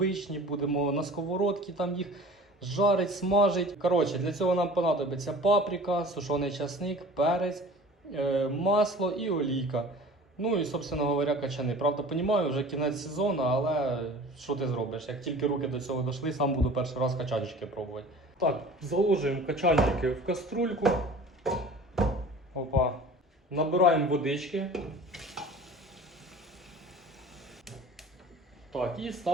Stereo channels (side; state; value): both; normal; correlation 0.43